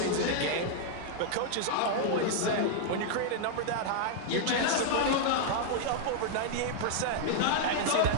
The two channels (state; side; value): different; both; correlation -0.01